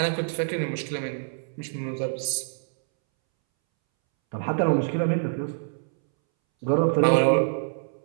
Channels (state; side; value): silent; left; 61 dB below the other